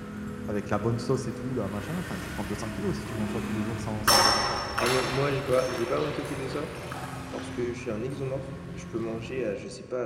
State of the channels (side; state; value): both; identical; correlation 1.00